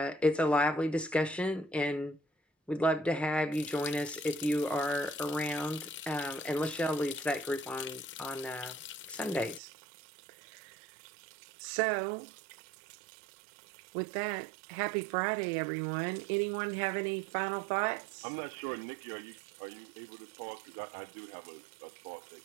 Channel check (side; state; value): left; drops out; at 9.6 s